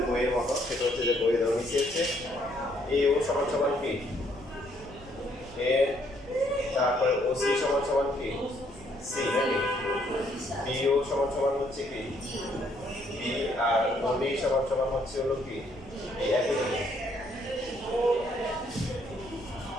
বইয়ের মতো সেটা হচ্ছে যে বইয়ে দেওয়া নিচে আছে এও সমান সমান কি এ তারপরে ওসি সমান সমান কি সি নাকি বিও সমান সমান হচ্ছে কি বি আর ওডি সমান সমান হচ্ছে হলো কি এই একই জিনিস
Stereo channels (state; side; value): noise; right; rumble, 19 dB below the sound